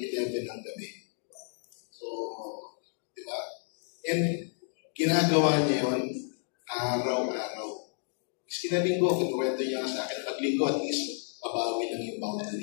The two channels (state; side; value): silent; right; 57 dB below the other